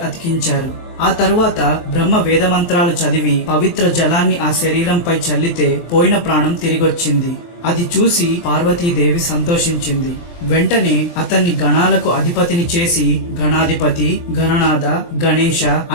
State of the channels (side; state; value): right; late; 23 ms